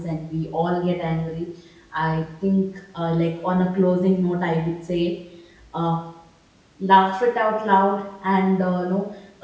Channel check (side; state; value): both; identical; correlation 1.00